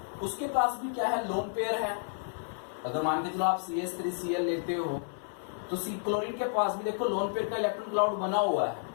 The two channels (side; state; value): right; silent; 57 dB below the other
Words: उसके पास भी क्या है? लोन पेयर है। अगर मान के चलो आप CH3Cl लेते हो तो क्लोरीन के पास भी देखो लोन पेयर का इलेक्ट्रॉन क्लाउड बना हुआ है,